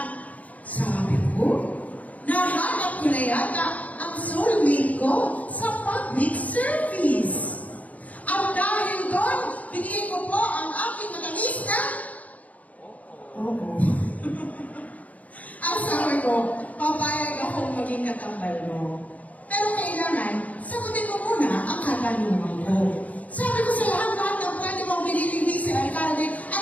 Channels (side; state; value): right; late; 0.072 ms